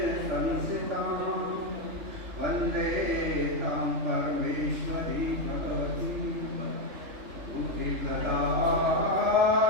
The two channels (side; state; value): left; late; 3.4 ms